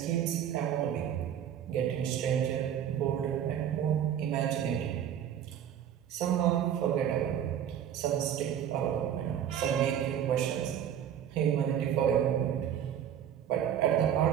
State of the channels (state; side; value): quieter; left; 9.7 dB